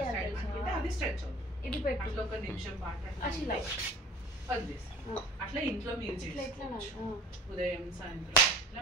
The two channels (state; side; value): normal; both; correlation 0.45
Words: ఇది పెట్టు అట్లా ఇంట్లో మీరు ఉదయం